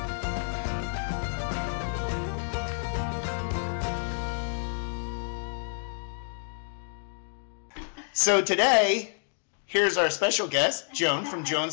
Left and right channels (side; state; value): right; silent; digital silence